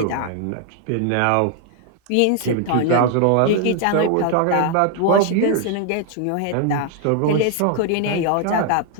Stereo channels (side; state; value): both; different; correlation 0.00